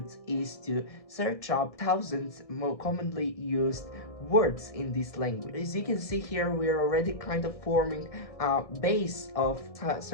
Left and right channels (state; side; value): late; right; 1.6 ms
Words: is to search up thousands more commonly used words in this language. As you can see here, we're already kind of forming a base of